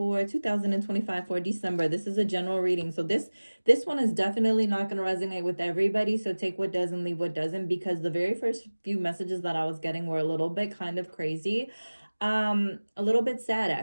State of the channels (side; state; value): both; inverted; correlation -1.00